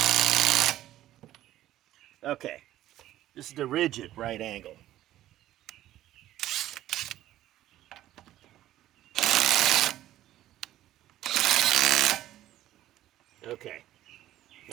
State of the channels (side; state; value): left; quieter; 13.7 dB